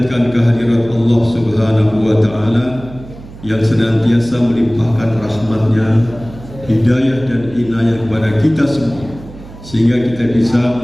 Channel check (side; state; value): right; noise; hum, 17 dB below the sound